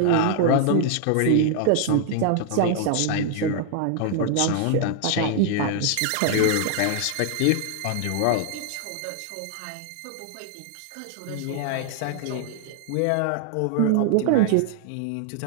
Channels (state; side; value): different; both; correlation 0.00